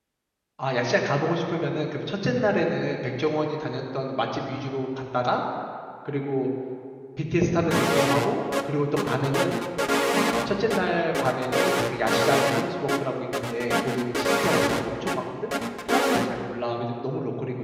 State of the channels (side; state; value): both; identical; correlation 1.00